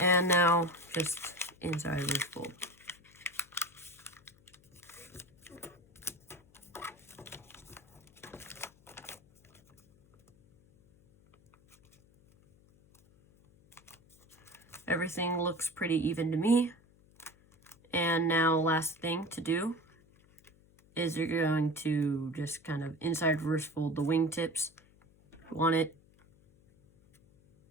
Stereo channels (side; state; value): left; noise; hum, 29 dB below the sound